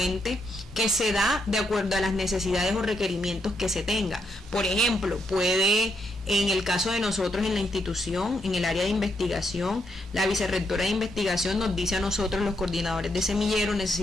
que se da de acuerdo a las necesidades o requerimientos que se tenga. Por ejemplo, puede, en el caso de nosotros en la institución, en el área de investigación, la vicerrectora de investigación nos dice a nosotros, los coordinadores de semilleros,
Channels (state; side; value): normal; both; correlation 0.78